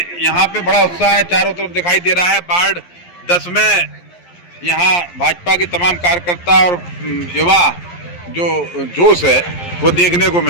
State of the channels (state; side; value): late; right; 11 ms